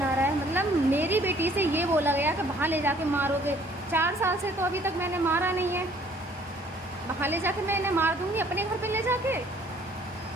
आ रहा है? मतलब मेरी बेटी से ये बोला गया कि वहाँ ले जाके मारोगे। 4 साल से तो अभी तक मैंने मारा नहीं है। वहाँ ले जाके मैं इन्हें मार दूँगी अपने घर पे ले जाके?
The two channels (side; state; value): both; normal; correlation 0.58